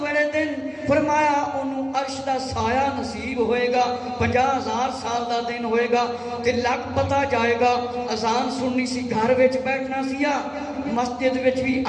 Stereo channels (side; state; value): both; identical; correlation 1.00